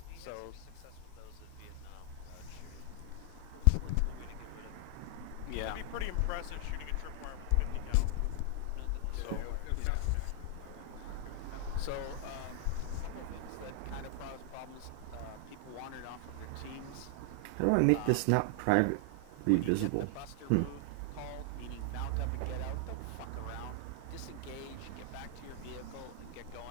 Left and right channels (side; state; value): both; different; correlation 0.00